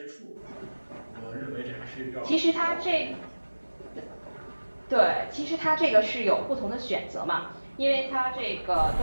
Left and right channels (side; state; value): both; inverted; correlation -1.00